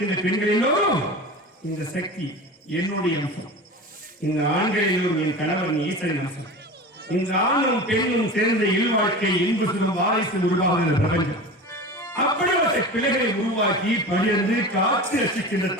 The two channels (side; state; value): both; normal; correlation 0.32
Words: பெண்கள் எல்லோரும் இந்த சக்தி என்னுடைய அம்சம். இந்த ஆண்கள் எல்லோரும் என் கணவன் ஈசனின் அம்சம். இந்த ஆணும் பெண்ணும் சேர்ந்த இல்வாழ்க்கை இன்பு சுகம் வாரிசு உருவாகிற பிரபஞ்சம். அப்படிப்பட்ட பிள்ளைகளை உருவாக்கி பகிர்ந்து காத்து ரசிக்கின்ற